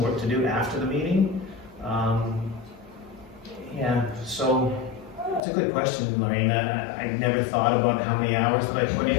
work to do after the meeting. So it's a good question, Lorraine. I never thought about how many hours that I put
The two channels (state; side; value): drops out; right; at 5.4 s